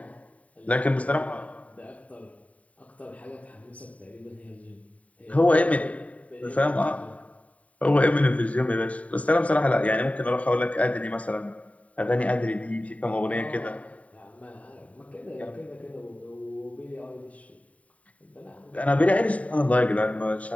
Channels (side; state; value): right; late; 0.068 ms